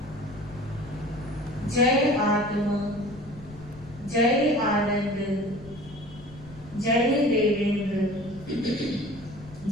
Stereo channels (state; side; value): noise; left; rumble, 18 dB below the sound